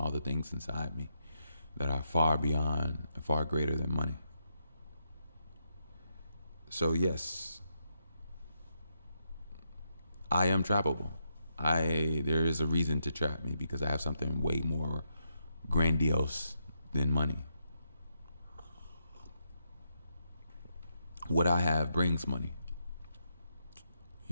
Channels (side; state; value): both; inverted; correlation -0.82